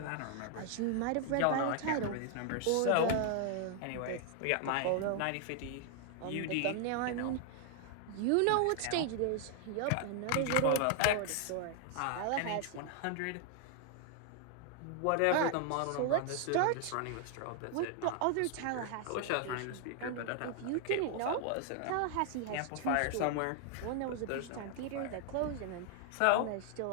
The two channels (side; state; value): both; different; correlation 0.00